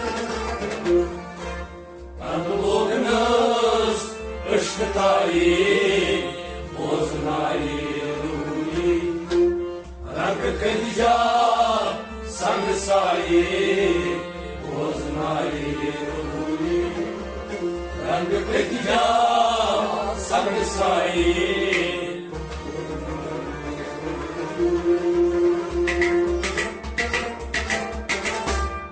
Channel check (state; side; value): identical; both; correlation 1.00